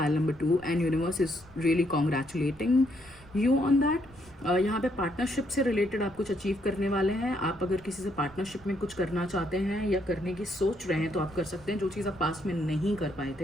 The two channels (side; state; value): right; noise; rumble, 23 dB below the sound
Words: number 2, and universe is really congratulating you on that. यहाँ पे पार्टनरशिप से रिलेटेड आप कुछ अचीव करने वाले हैं। आप अगर किसी से पार्टनरशिप में कुछ करना चाहते हैं या करने की सोच रहे हैं तो आप कर सकते हैं, जो चीज़ आप पास्ट में नहीं कर पाए